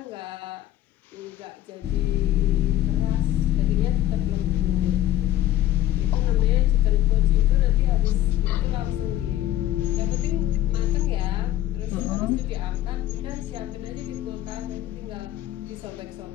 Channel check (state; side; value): quieter; right; 13.5 dB